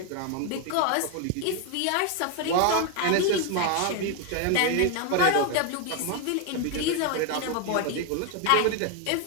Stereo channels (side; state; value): both; different; correlation 0.01